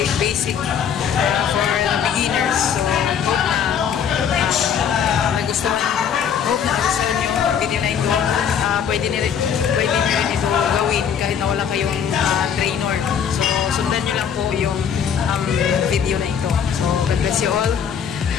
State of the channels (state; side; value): quieter; right; 7.9 dB